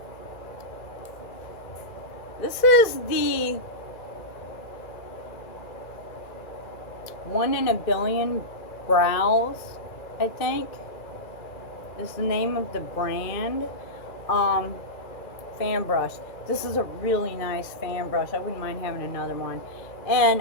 This is the 1 in a Billion Brows, I think, is the name of the brand. Fan brush. This is a really nice fan brush. I wouldn't mind having another one. And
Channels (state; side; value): late; right; 2.4 ms